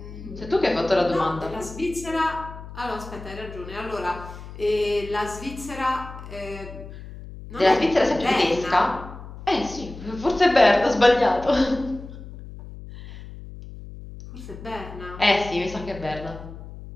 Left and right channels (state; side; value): noise; left; hum, 14 dB below the sound